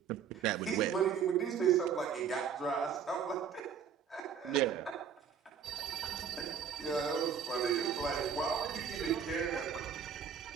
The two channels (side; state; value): left; quieter; 7.4 dB